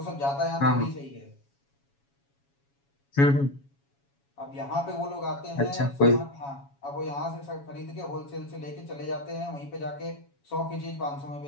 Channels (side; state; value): right; late; 7.2 ms